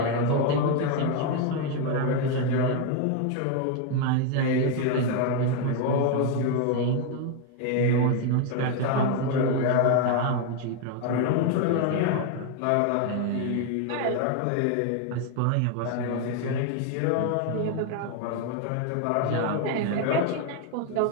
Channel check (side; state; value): both; different; correlation 0.01